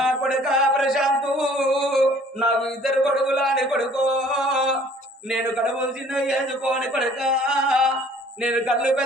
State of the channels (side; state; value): both; normal; correlation 0.55